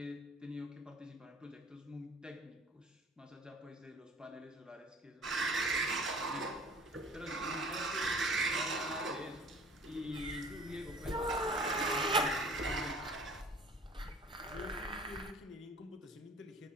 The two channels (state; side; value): normal; both; correlation 0.48